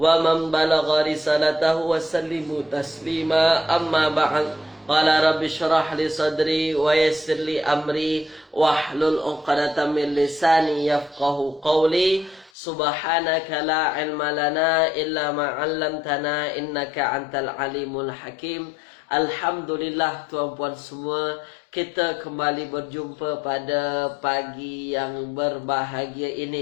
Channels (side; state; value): right; drops out; at 12.5 s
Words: man balagha risalatahu wa sallimu taslima. Amma ba'd. Qala rabbi syrah li sadri wa yassir li amri wahlul 'uqdatam min lisani yafqahu qawli. Subhanaka la ilma lana illa ma 'allamtana innaka antal alimul hakim. Alhamdulillah tuan-puan semua, kita kembali berjumpa pada pagi yang berbahagia